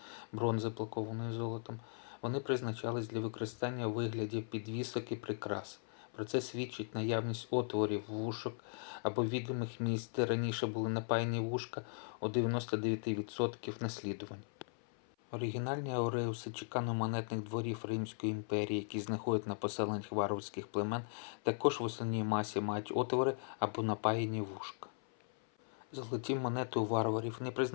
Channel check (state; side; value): silent; right; 52 dB below the other